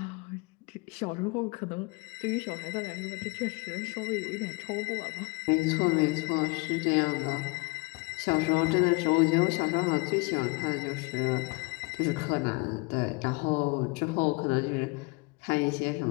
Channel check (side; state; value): right; quieter; 28.8 dB